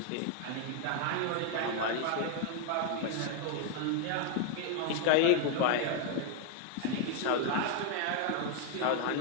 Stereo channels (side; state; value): both; different; correlation 0.01